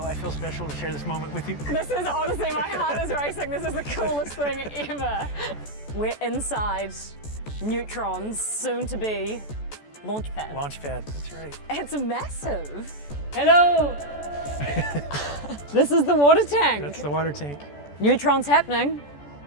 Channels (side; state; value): right; late; 14 ms